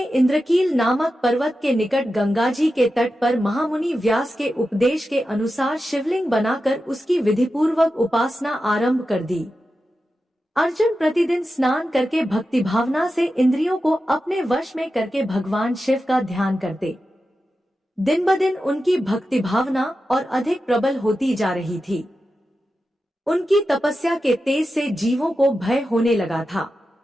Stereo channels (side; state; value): both; normal; correlation 0.91